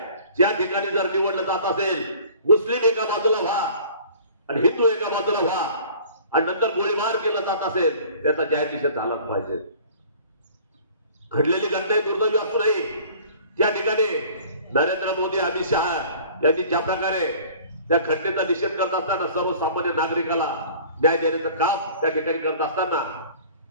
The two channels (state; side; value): inverted; both; correlation -0.48